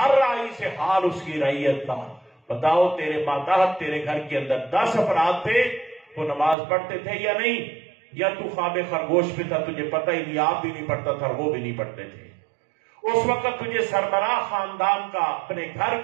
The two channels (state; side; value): drops out; left; at 6.6 s